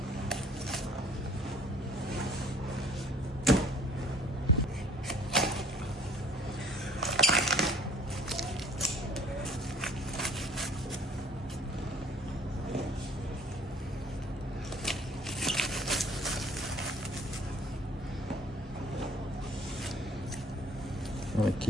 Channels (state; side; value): normal; both; correlation 0.55